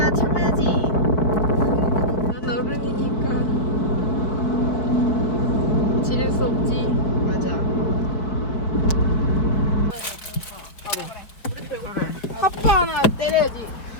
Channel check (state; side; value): late; right; 4.5 ms